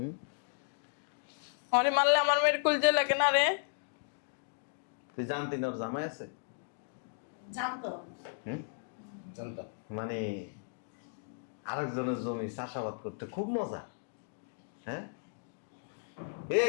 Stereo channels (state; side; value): silent; right; digital silence